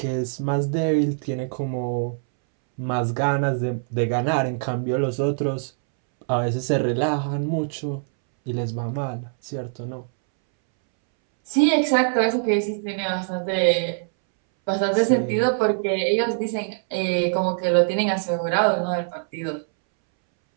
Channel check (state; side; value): silent; left; 63 dB below the other